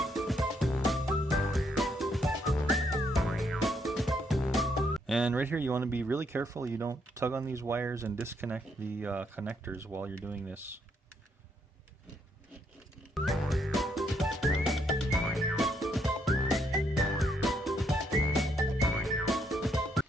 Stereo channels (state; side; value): normal; both; correlation 0.74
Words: And right here you want to be really careful you don't tug on these wires and disconnect the connectors while you're doing this.